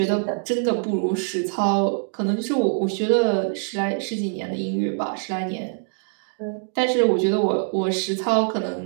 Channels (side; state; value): left; silent; 63 dB below the other